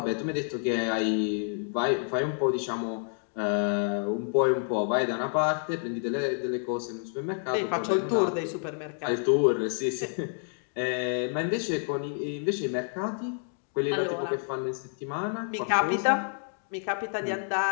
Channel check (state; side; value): silent; right; 59 dB below the other